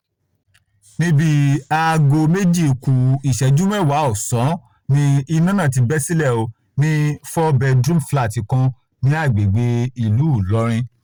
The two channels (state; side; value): identical; both; correlation 1.00